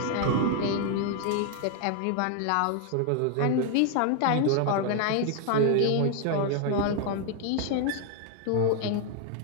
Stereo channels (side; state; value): both; different; correlation 0.01